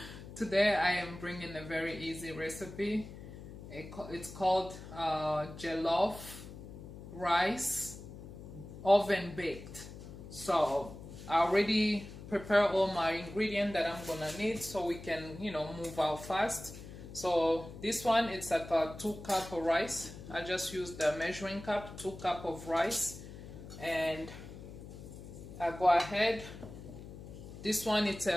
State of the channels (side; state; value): left; noise; hum, 13 dB below the sound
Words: today I am bringing a very easy recipe. It's called jollof rice oven baked. So I already prepare all my ingredients that I'm gonna need so we can move out fast. So this one, it's like a 2 cup of rice. I just used the measuring cup, 2 cup of rice, and I go ahead. This one, it's